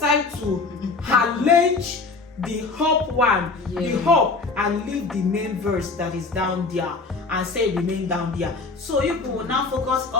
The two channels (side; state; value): right; quieter; 4.0 dB